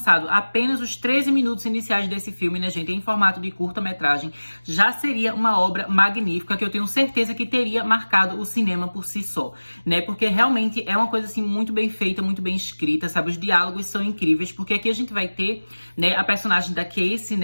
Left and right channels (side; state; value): both; inverted; correlation -1.00